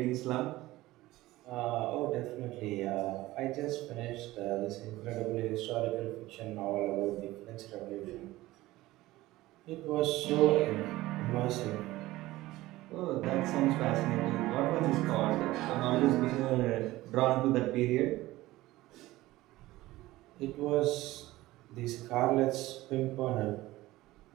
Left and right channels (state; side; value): quieter; left; 17.7 dB